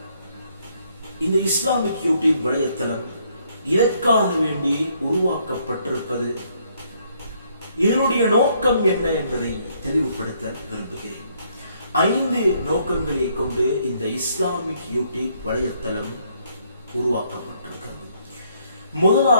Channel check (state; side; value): inverted; both; correlation -0.69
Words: இந்த இஸ்லாமிக் யூடியூப் வலைத்தளம் இதற்காக வேண்டி உருவாக்கப்பட்டிருப்பது, இதனுடைய நோக்கம் என்ன என்பதை தெளிவுபடுத்த விரும்புகிறேன். 5 நோக்கங்களை கொண்டு இந்த இஸ்லாமிக் யூடியூப் வலைத்தளம் உருவாக்கப்பட்டிருக்கிறது.